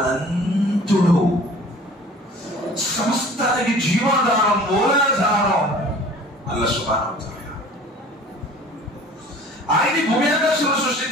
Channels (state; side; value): normal; both; correlation 0.47